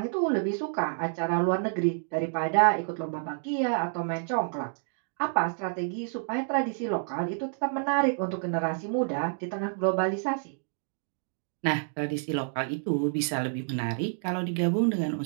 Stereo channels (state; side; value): silent; left; digital silence